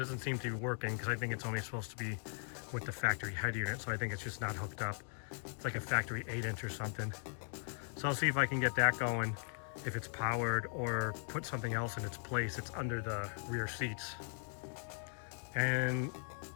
seem to be working because I think it's only supposed to be with the factory head unit, so I think it's just not hooked up. It's like a factory 8-inch or something. So I'll see if I can get that going, if it's powered, or put something else in its place. It's under the rear seats. And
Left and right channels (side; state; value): right; silent; 52 dB below the other